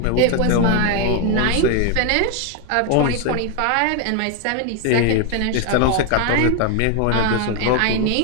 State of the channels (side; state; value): both; different; correlation 0.01